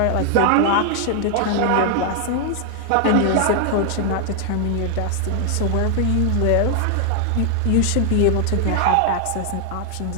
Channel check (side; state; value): both; different; correlation 0.00